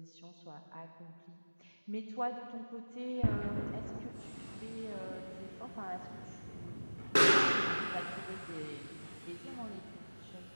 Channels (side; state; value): both; inverted; correlation -1.00